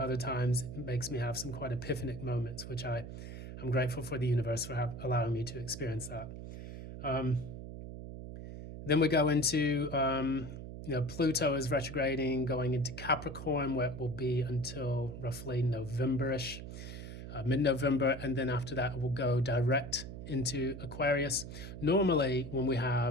other times it makes me have some quite epiphanic moments, which I'm grateful for the universe for allowing me to experience that. Then we go into, Pluto is retrograding, going into Capricorn, where it will be until roughly November-ish, mid-November, and then after that it will go direct into Aquarius. Normally, when we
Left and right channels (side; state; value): right; noise; hum, 10 dB below the sound